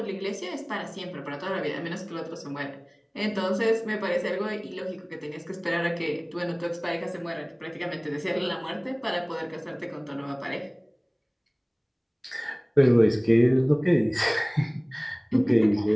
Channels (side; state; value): both; identical; correlation 1.00